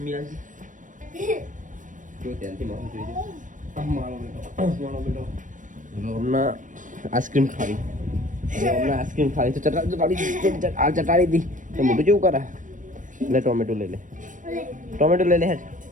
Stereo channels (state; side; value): late; left; 0.37 ms